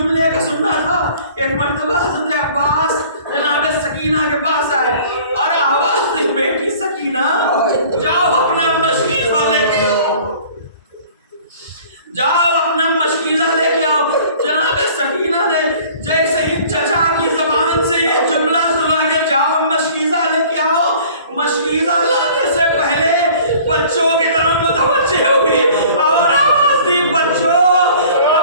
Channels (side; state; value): both; inverted; correlation -0.49